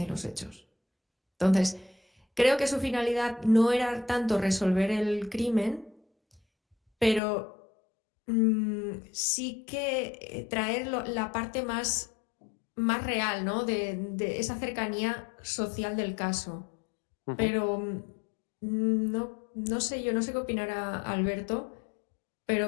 los hechos. Entonces, creo que su finalidad no era tanto resolver el crimen, pero sí que traer la parte más real, ¿no? de esa cercanía social del caso. Pero no sé, yo no sé qué opinará Alberto,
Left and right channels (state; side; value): drops out; right; at 7.2 s